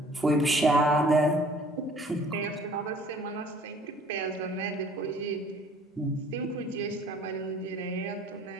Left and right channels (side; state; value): both; normal; correlation 0.54